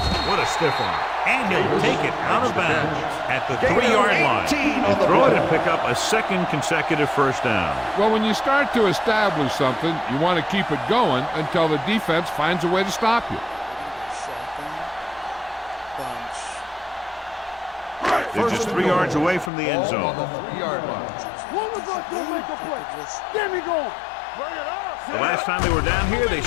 What a stiff one. And he'll take it out of bounds at the 3-yard line. He'll throw it and pick up a second consecutive first down. Well, when you start to establish something, you want to keep it going until the defense finds a way to stop you. They're just 3 yards away from the end zone. The last time they were down here, they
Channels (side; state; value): right; drops out; at 19.5 s